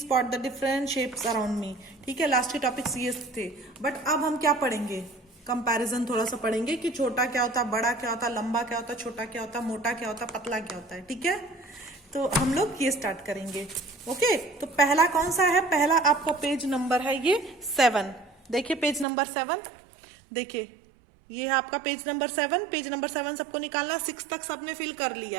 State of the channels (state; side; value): drops out; left; at 19.1 s